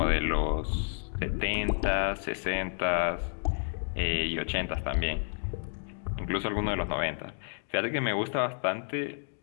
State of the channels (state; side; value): silent; right; digital silence